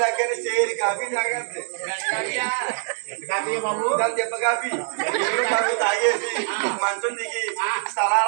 లాగానే చేరి కాఫీ తాగేది. దాని దెబ్బ కాఫీ తాగేసి మంచం దిగి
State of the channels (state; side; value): silent; left; 63 dB below the other